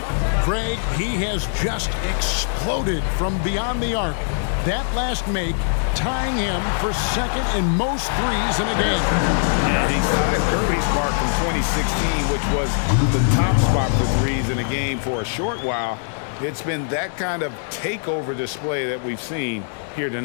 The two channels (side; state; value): right; silent; digital silence